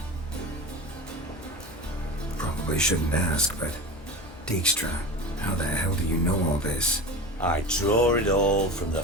Probably shouldn't ask, but... Dijkstra, how the hell do you know all this? I draw it all from the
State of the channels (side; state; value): both; normal; correlation 0.30